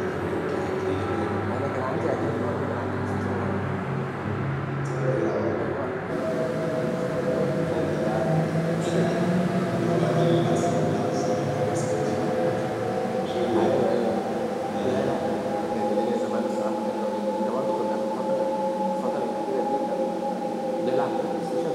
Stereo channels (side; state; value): both; identical; correlation 1.00